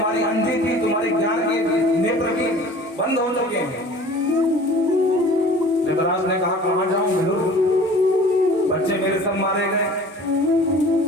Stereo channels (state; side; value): normal; both; correlation 0.45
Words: अंधी थी, तुम्हारे ज्ञान के नेत्र भी बंद हो चुके हैं। धृतराष्ट्र ने कहा कहां जाऊं विदुर, बच्चे मेरे सब मारे गए,